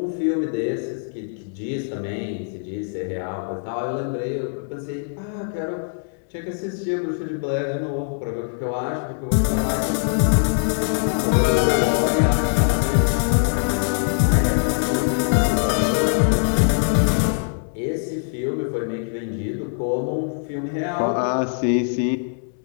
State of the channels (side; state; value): right; silent; digital silence